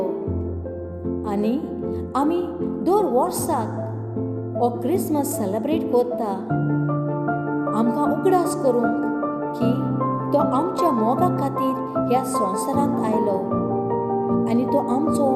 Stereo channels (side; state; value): both; identical; correlation 1.00